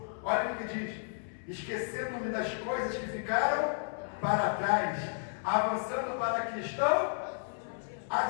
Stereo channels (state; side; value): silent; right; 56 dB below the other